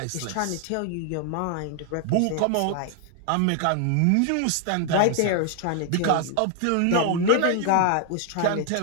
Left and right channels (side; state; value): both; different; correlation 0.00